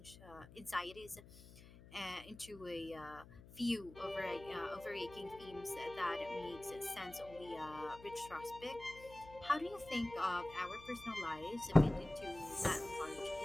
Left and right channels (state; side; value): noise; left; hum, 18 dB below the sound